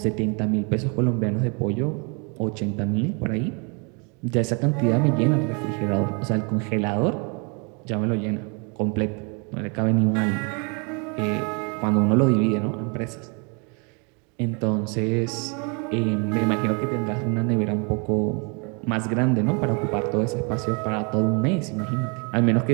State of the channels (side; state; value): left; quieter; 34.1 dB